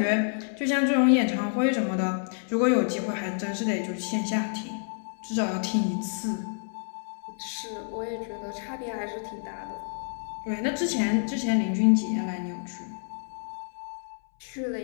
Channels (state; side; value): silent; right; 59 dB below the other